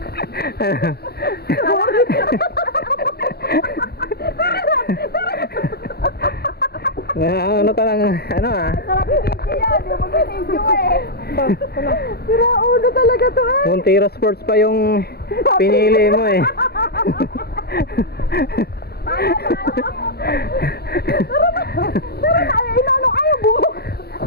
Ano ka lang, ano ah? Sarap yung video yan. Yung mag-video eh. Sira ulo talaga to eh. Montero Sports pa yung pinili mo eh. Tara na, inano ayaw bumuk.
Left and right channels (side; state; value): right; late; 0.46 ms